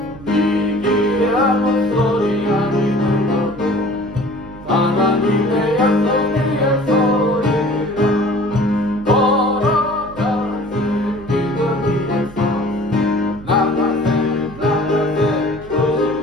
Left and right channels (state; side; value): noise; right; hum, 18 dB below the sound